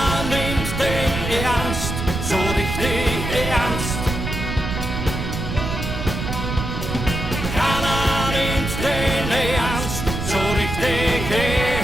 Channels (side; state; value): right; noise; rumble, 4 dB below the sound